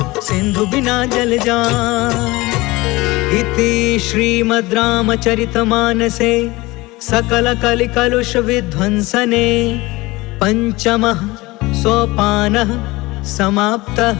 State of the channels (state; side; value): quieter; right; 21.3 dB